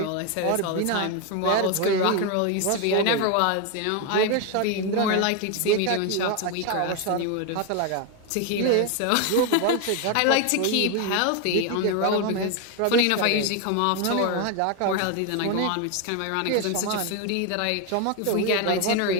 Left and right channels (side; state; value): both; different; correlation 0.01